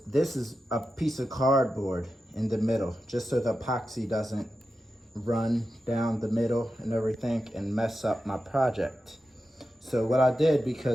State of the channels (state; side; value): normal; both; correlation 0.91